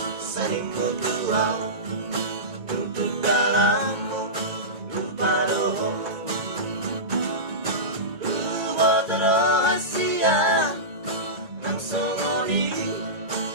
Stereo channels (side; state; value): left; late; 2.2 ms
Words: saling mutual untuk dalammu lupa doh lupa rahasia nang songoni